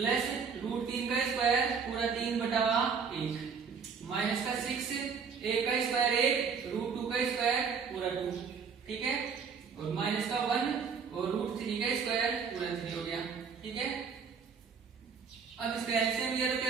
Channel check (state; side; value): quieter; left; 5.9 dB